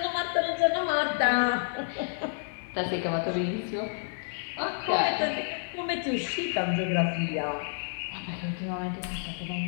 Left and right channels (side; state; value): right; silent; digital silence